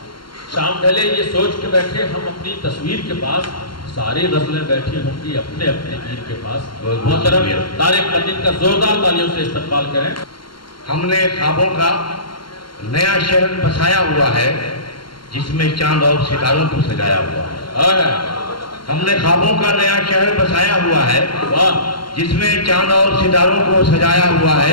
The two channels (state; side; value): late; right; 0.73 ms